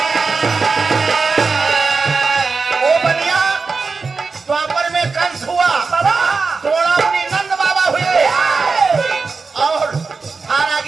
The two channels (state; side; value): quieter; left; 4.5 dB